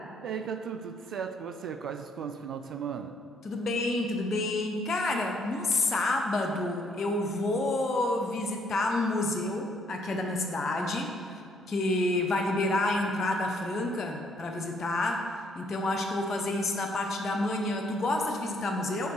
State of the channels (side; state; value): both; normal; correlation 0.68